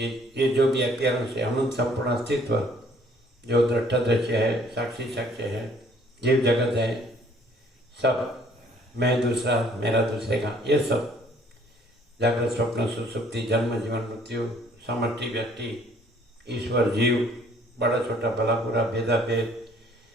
जो भी अपियरेंस है, अनंत संपूर्ण अस्तित्व जो दृष्टा दृश्य है, साक्षी साक्ष्य है, जीव जगत है, सब मैं दूसरा मेरा दूसरे का, ये सब जागृत स्वप्न सुसुप्ति जन्म जीवन मृत्यु समष्टि व्यक्ति ईश्वर जीव बड़ा छोटा भला बुरा भेदा भेद।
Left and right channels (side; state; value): both; normal; correlation 0.59